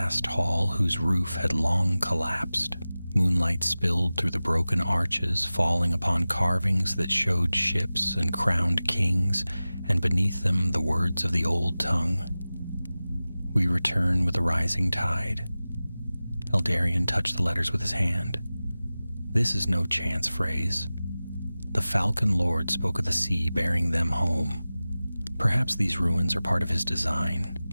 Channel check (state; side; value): inverted; both; correlation -0.97